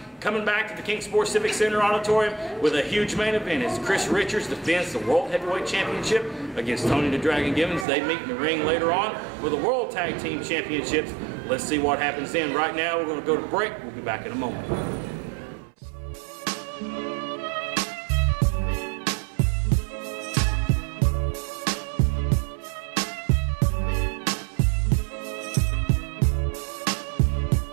coming back to the King Sports Civic Center Auditorium with a huge main event as Chris Richards defends the World Heavyweight Championship against Tony the Dragon Gibbons. They meet in the ring later on for the World Tag Team Championships. Let's see what happens then. Right now, we're going to go to break. We'll be back in a moment.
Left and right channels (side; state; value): left; drops out; at 7.9 s